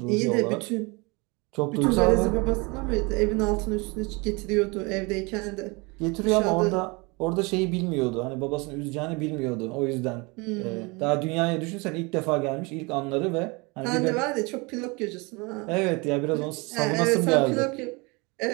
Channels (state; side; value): quieter; left; 27.5 dB